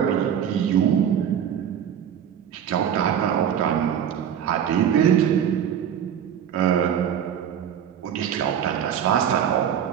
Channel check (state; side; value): quieter; left; 9.0 dB